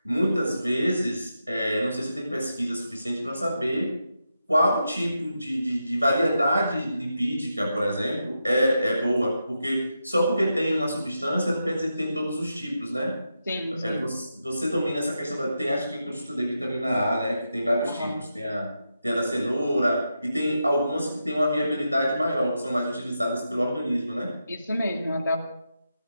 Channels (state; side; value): inverted; both; correlation -0.87